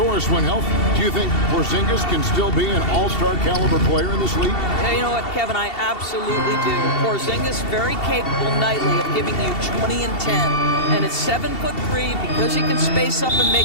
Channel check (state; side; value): late; right; 2.7 ms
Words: when healthy, do you think Porzingis can still be an all-star caliber player in this league? Yeah, you know what, Kevin? I absolutely do. Porzingis very capable nightly of giving you 20 and 10. And at 7'3", because he can space up and make